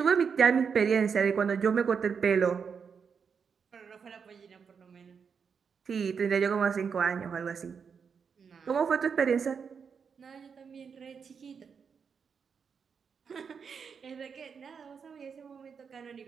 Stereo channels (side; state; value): left; quieter; 6.3 dB